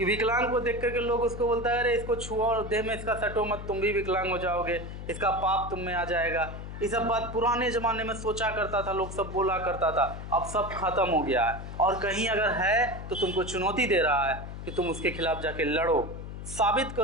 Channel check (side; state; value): left; noise; hum, 9 dB below the sound